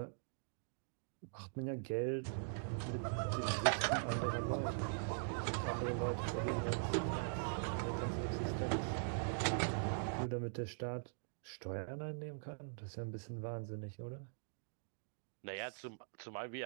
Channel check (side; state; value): left; silent; digital silence